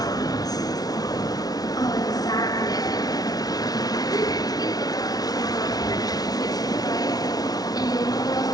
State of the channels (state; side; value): late; right; 0.19 ms